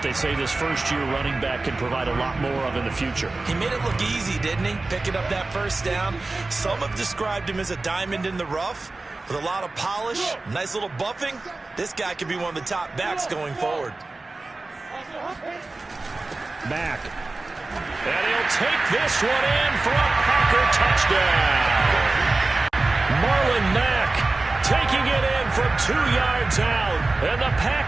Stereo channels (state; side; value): quieter; left; 3.3 dB